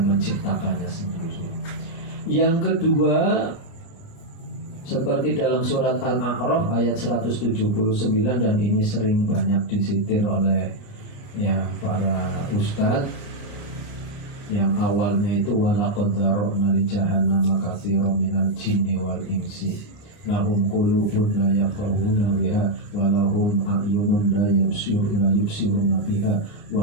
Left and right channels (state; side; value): late; right; 28 ms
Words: menciptakannya sendiri. Yang kedua, seperti dalam surat Al-A'raf ayat 179, dan ini sering banyak disitir oleh ya para ustadz, yang awalnya itu walaqad dzara'na li jahannama katsiran minal jinni wal insi lahum qulubun la yafqahuna biha wa lahum a'yunun la yubsiruna biha